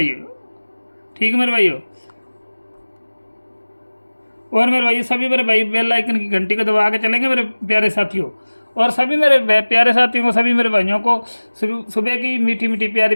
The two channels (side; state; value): both; inverted; correlation -1.00